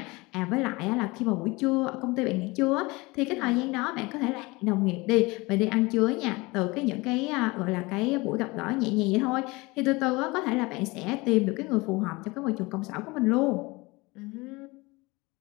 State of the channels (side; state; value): right; quieter; 23.8 dB